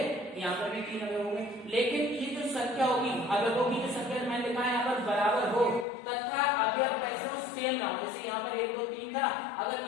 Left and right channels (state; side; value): drops out; right; at 5.9 s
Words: यहाँ पर भी 3 अवयव होंगे, लेकिन ये जो संख्या होगी अवयवों की जो संख्या मैंने लिखा है यहाँ पर बराबर हो तथा अवयव कैसे हो? सेम ना हो। जैसे यहाँ पर 1 2 3 था,